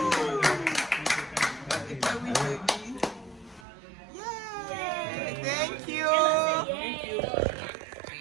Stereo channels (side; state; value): left; drops out; at 3.7 s